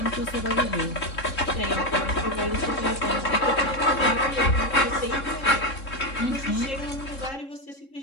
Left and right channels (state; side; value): late; right; 3.7 ms